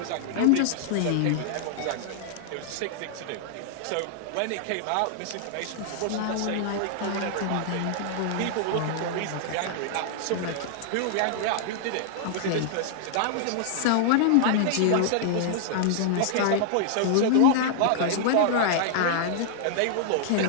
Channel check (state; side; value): different; both; correlation -0.01